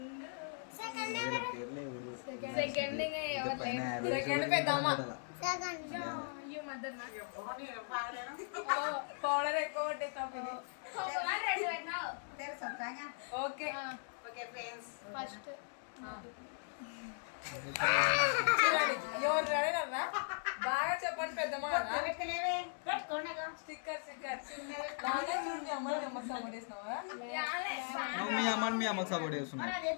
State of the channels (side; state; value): right; silent; digital silence